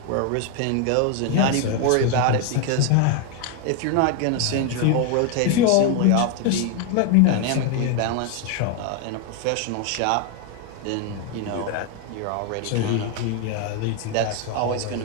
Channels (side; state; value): both; different; correlation 0.01